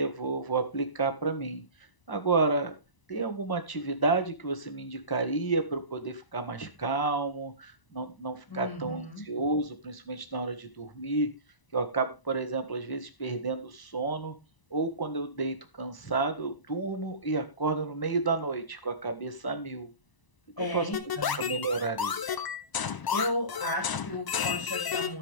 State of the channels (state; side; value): late; right; 1.0 ms